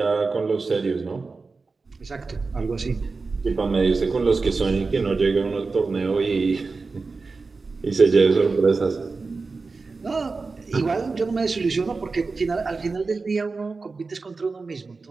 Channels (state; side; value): quieter; left; 4.1 dB